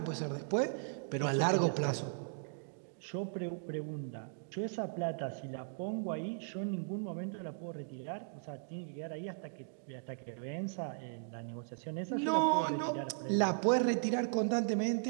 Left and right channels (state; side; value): silent; left; digital silence